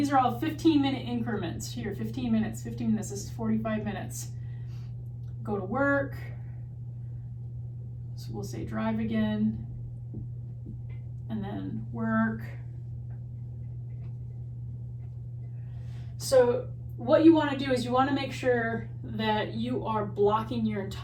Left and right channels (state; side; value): identical; both; correlation 1.00